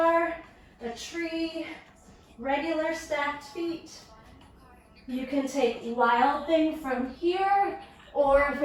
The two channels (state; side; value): identical; both; correlation 1.00